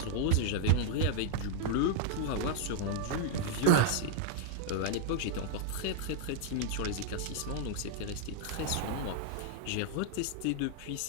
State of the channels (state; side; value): different; both; correlation 0.00